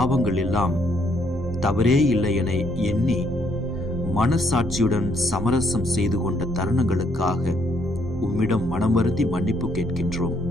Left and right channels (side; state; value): both; normal; correlation 0.70